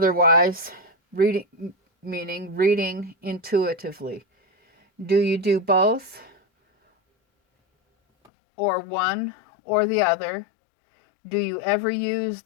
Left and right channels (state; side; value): drops out; right; at 8.3 s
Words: meaning reading intuitively. Do you do both, or one or the other? Do you ever use